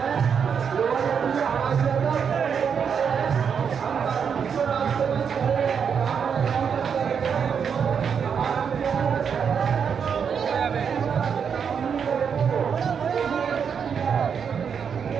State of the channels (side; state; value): left; quieter; 6.9 dB